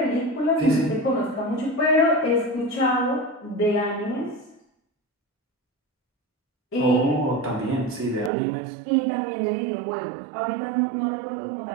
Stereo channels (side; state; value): left; drops out; at 8.3 s